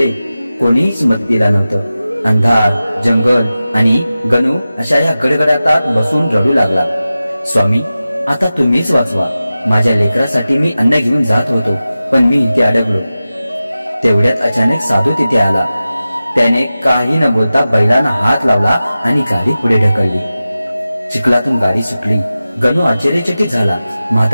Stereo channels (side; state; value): both; inverted; correlation -0.95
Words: कोणीच मदतीला नव्हतं। अंधार, जंगल आणि गणू अशा या गडगडाटात बसून रडू लागला। स्वामी आता तुम्हीच वाचवा, माझ्या लेकरासाठी मी अन्न घेऊन जात होतो, पण मी इथे अडकलो। तेवढ्यात अचानक साधू तिथे आला। त्याने काही न बोलता बैलांना हात लावला आणि गाडी पुढे ढकलली। चिखलातून गाडी सुटली। गणू आश्चर्यचकित झाला।